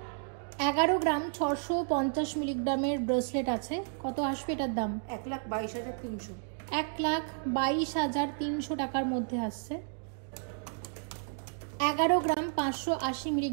11 গ্রাম 650 মিলিগ্রামের ব্রেসলেট আছে। কত আসবে এটার দাম? 1,22,300। 1,22,300 টাকার মধ্যে আসছে। 11 গ্রাম 580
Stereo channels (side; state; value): left; silent; digital silence